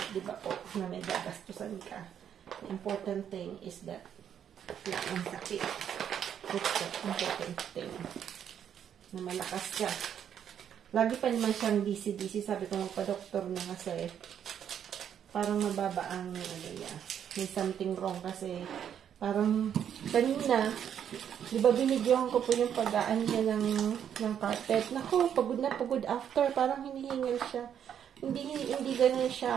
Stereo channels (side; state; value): left; quieter; 9.0 dB